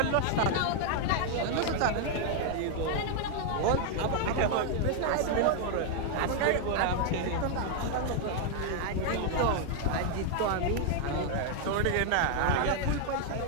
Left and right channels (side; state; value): both; different; correlation 0.00